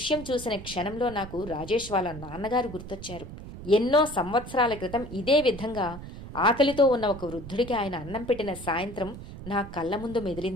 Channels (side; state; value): right; noise; rumble, 12 dB below the sound